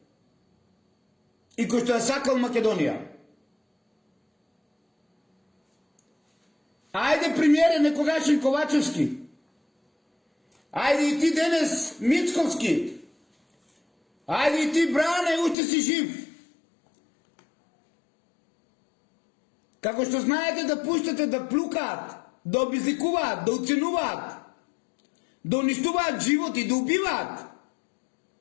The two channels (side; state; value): right; drops out; at 15.6 s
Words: и кој што ја сакал Македонија. Ајде, премиере некогашен Ковачевски, ајде и ти денес Мицковски, ајде и ти Бране, уште си жив. Како што знаете да пуштате да плукаат, да обезликуваат, да уценуваат, да уништуваат животи, да убиваат.